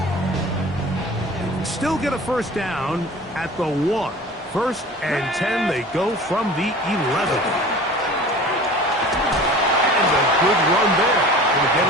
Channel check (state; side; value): normal; both; correlation 0.41